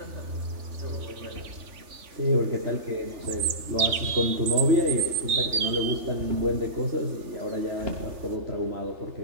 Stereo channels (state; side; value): late; left; 3.5 ms